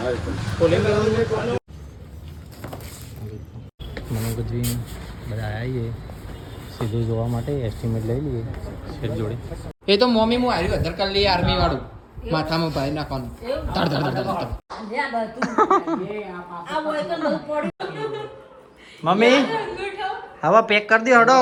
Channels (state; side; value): identical; both; correlation 1.00